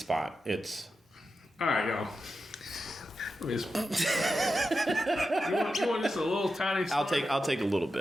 It's all right, y'all. Let me just, you want just a little tiny spot? I'll take a little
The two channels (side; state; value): both; normal; correlation 0.90